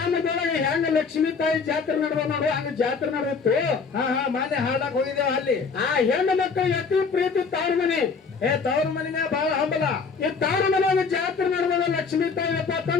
ಹೆಂಗ ಲಕ್ಷ್ಮೀ ತಾಯಿ ಜಾತ್ರೆ ನಡೆದ ನೋಡು ಹಂಗ ಜಾತ್ರೆ ನಡೆದಿತ್ತು. ಮಾನ್ಯ ಹಾಡಕ್ ಹೋಗಿದ್ದೇವ ಅಲ್ಲಿ. ಆ ಹೆಣ್ಣು ಮಕ್ಕಳು ಅತಿ ಪ್ರೀತಿ ತವ್ರ ಮನೆ. ತವ್ರ ಮನಿನ ಬಹಳ ಹಂಬಲ. ಈ ತವ್ರ ಮನೆ ಜಾತ್ರೆ ನಡೆದ ಲಕ್ಷ್ಮೀ ತಾಯಿ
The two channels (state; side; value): quieter; right; 5.1 dB